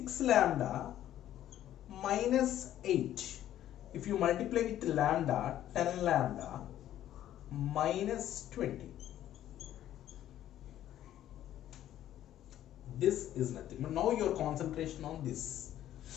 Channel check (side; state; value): right; quieter; 12.2 dB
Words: lambda minus 8. If you multiply with lambda, 10 lambda minus 20. This is nothing. But now your concentration on this.